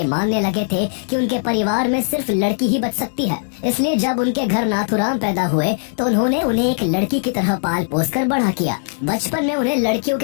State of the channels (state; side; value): silent; right; 66 dB below the other